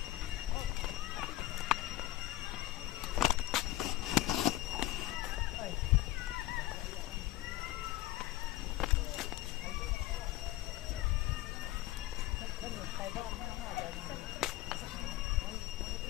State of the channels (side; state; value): right; quieter; 16.1 dB